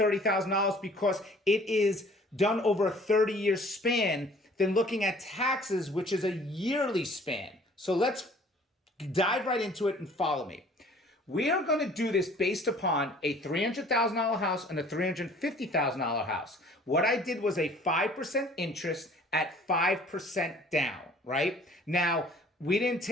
$30,000 because it is done over a 30-year span than looking at taxes, which is a yearly span. So let's dive right into it and follow me. We are going to do this based upon a $300,000 house and a $350,000 house. What I did was a 5% interest at 5% down, right? Now, we didn't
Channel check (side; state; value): both; normal; correlation 0.53